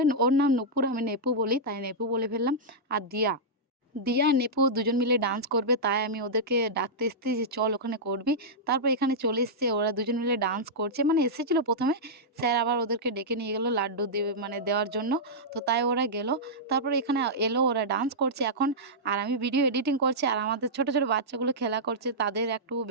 ওর নাম নূপুর, আমি নেপু বলি তাই নেপু বলে ফেললাম। আর দিয়া আর নেপু দুজন মিলে ডান্স করবে, তাই আমি ওদেরকে ডাকতে এসেছি যে চল ওখানে করবি। তারপর এখানে চলে এসছে, ওরা দুজন মিলে ডান্স করছে। মানে এসেছিল ১ম এ, স্যার আবার ওদেরকে ডেকে নিয়ে গেল লাড্ডু দিয়ে মানে দেওয়ার জন্য। তো তাই ওরা গেল। তারপরে এখানে এলো, ওরা ডান্স করছে এখন। আর আমি ভিডিও এডিটিং করছি। আর আমাদের ছোট বাচ্চাগুলো খেলা করছে। তাদের একটু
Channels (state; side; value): normal; both; correlation -0.10